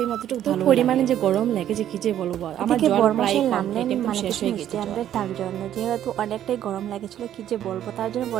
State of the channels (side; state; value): left; quieter; 11.1 dB